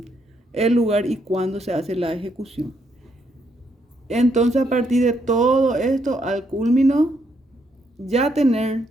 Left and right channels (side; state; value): both; normal; correlation 0.75